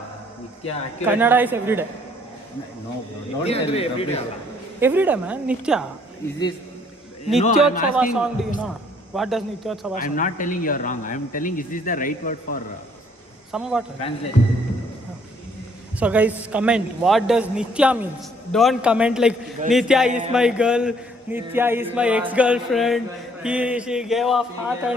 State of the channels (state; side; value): normal; both; correlation 0.63